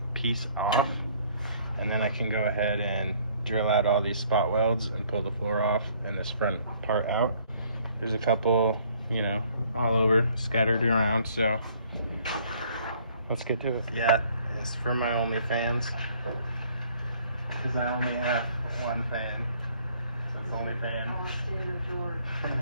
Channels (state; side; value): inverted; both; correlation -0.60